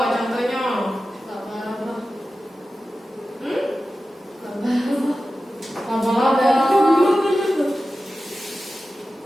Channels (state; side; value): normal; both; correlation 0.94